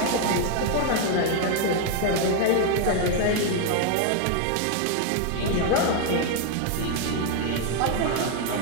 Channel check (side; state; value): both; different; correlation 0.01